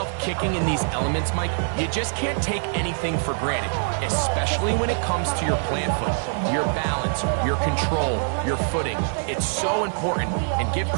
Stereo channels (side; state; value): left; silent; 63 dB below the other